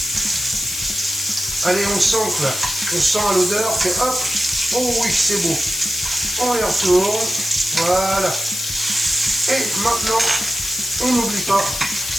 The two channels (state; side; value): noise; left; hiss, 6 dB below the sound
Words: Allez, on sent là. On sent à l'odeur que hop. Oh oui, c'est beau. On les retourne. Voilà. Et maintenant, on n'oublie pas